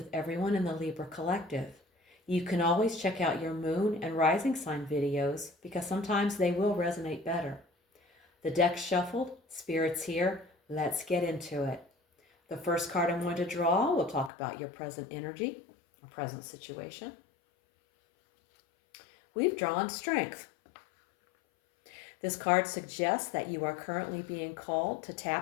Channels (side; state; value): right; drops out; at 14.3 s